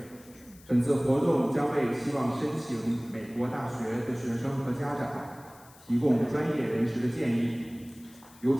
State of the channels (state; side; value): noise; left; hiss, 24 dB below the sound